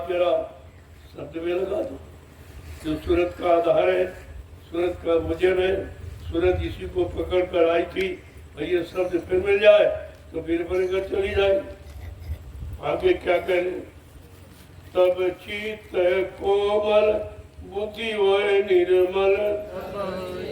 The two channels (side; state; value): both; identical; correlation 1.00